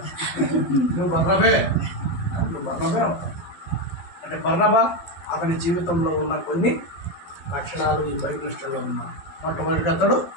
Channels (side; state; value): right; late; 12 ms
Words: నువ్వు బర్నబే అవుతావు. అంటే బర్నబా అతని జీవితంలో ఉన్న కొన్ని లక్షణాలు ఈ బైబిల్ స్టోరీలో ఉన్నాయి. మొట్టమొదటిగా అతడు